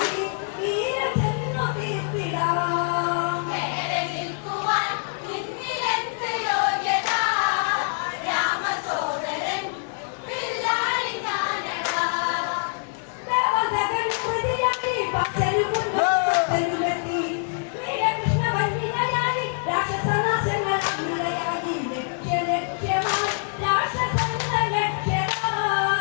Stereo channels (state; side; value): silent; right; 62 dB below the other